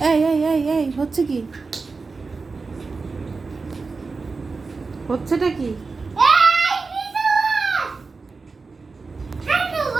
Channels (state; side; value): quieter; left; 4.2 dB